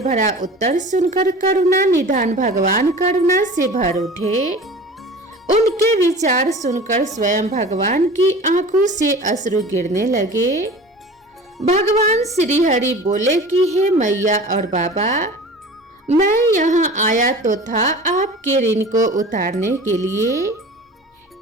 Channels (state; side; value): normal; both; correlation 0.39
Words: भरा उत्तर सुनकर करुणा निधान भगवान करुणा से भर उठे। उनके विचार सुनकर स्वयं भगवान की आंखों से अश्रु गिरने लगे। भगवान श्री हरि बोले कि हे मैया और बाबा, मैं यहाँ आया तो था आपके ऋण को उतारने के लिए,